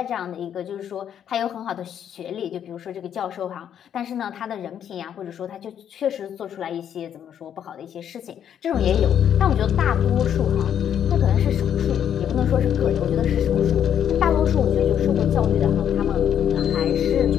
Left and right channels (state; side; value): quieter; right; 9.3 dB